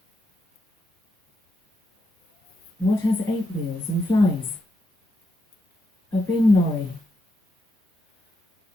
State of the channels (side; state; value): both; normal; correlation 0.82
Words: What has 8 wheels and flies? A bin lorry.